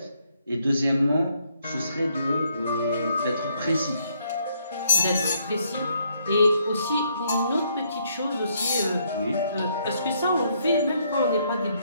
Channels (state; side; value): inverted; both; correlation -0.71